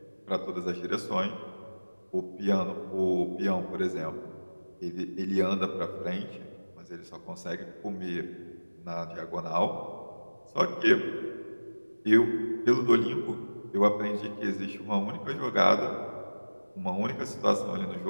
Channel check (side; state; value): both; inverted; correlation -1.00